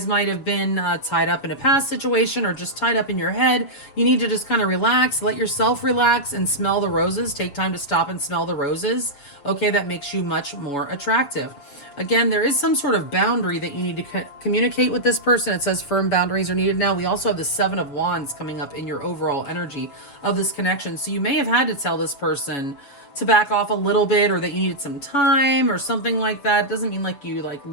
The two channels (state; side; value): late; right; 7.1 ms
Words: might have been tied up in a past situation or just tied up in your head. You need to just kind of relax, let yourself relax and smell the roses. Take time to stop and smell the roses. Okay, that makes you much more attractive. Again, there is some sort of boundary that you need to communicate with this person. It says firm boundaries are needed now. We also have the 7 of Wands coming up in your overall energy of this connection. So you may have had to tell this person to back off a little bit or that you needed some time or something like that. It doesn't mean like you